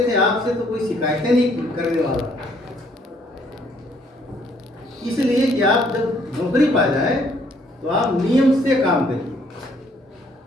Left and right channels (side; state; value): both; normal; correlation 0.65